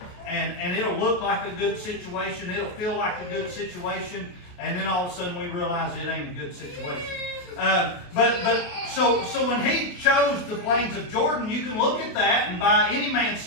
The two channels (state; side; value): late; right; 28 ms